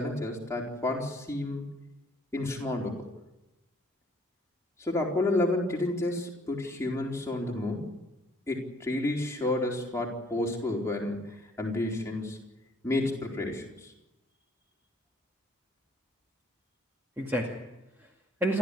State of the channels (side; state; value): both; normal; correlation 0.61